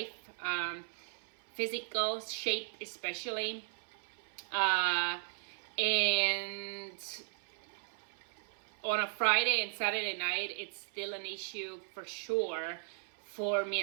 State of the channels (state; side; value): silent; left; 53 dB below the other